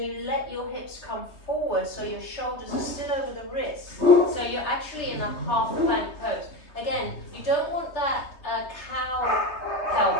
you let your hips come forward so your shoulders are still over the wrists. So you're actually in a half plank pose. Again, you don't want that cow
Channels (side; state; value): right; late; 3.2 ms